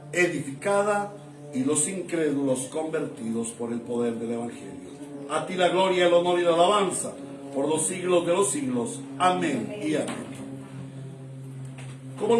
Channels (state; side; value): identical; both; correlation 1.00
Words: edificada y los incrédulos convertidos por el poder del Evangelio. A ti la gloria, el honor y la alabanza por los siglos de los siglos. Amén y amén. Como